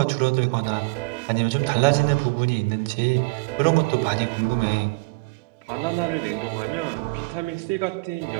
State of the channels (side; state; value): left; quieter; 27.7 dB